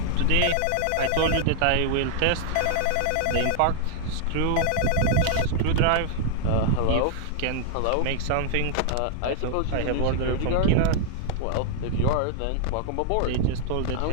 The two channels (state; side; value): different; both; correlation 0.00